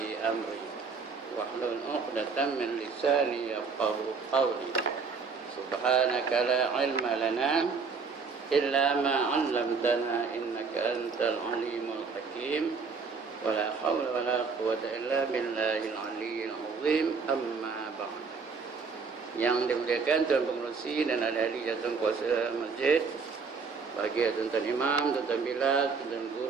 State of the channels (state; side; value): quieter; left; 5.1 dB